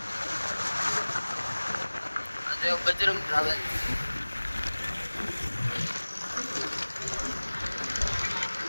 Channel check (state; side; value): inverted; both; correlation -1.00